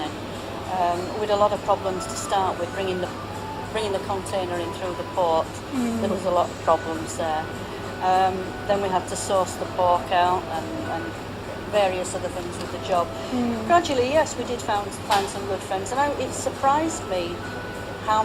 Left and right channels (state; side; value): identical; both; correlation 1.00